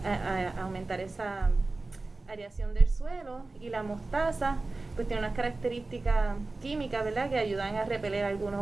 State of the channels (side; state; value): left; quieter; 3.3 dB